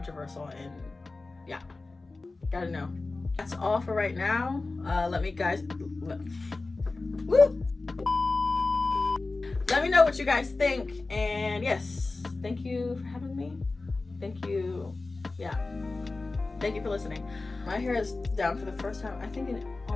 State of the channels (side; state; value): right; quieter; 3.5 dB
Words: and yeah, gotta know. That's all for right now. Let me know what you guys think, and yes, thank you for having me. Thank you. Yeah. Thank you for listening. My hair is down for the first time, I think, in